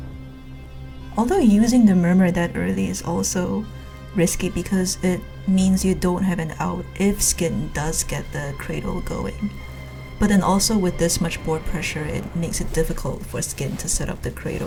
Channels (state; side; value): identical; both; correlation 1.00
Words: Although using the Murmur that early is also risky because it means you don't have an out if Skint does get the Cradle going. But then also with this much board pressure, it makes it difficult for Skint to set up the